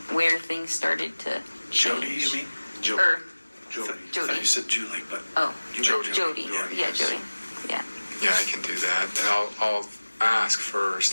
where things started to change. Jody, you mean? Jody. I thought you said Julie, but Jody. Yeah, Jody. Yeah. Yeah, I can do that. And I'll ask first,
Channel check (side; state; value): both; inverted; correlation -1.00